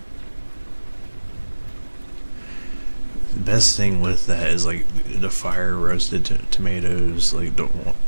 best thing with that is like the fire roasted tomatoes, like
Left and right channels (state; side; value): inverted; both; correlation -1.00